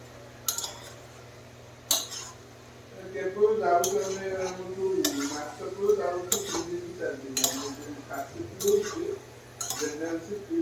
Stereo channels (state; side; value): identical; both; correlation 1.00